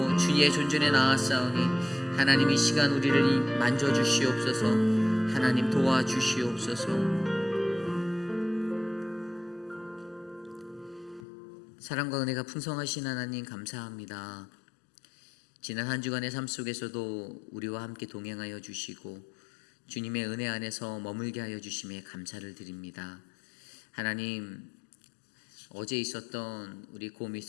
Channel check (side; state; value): right; drops out; at 11.2 s